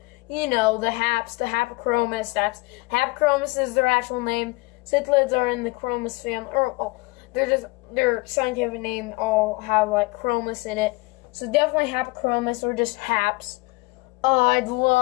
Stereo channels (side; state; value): right; quieter; 24.6 dB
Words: haps, the Hapachromis, Hapachromis is their actual name. Cichlids are in the Chromis family, their scientific name all have like Chromis in it. So definitely Hapachromis or just haps. I'd